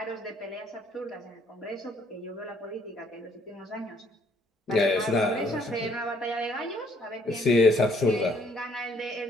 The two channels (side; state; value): both; normal; correlation 0.65